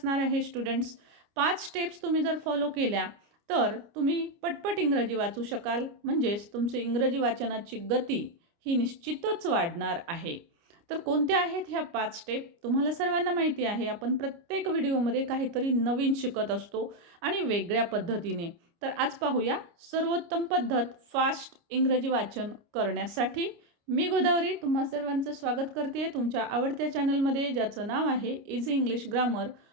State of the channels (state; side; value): late; left; 29 ms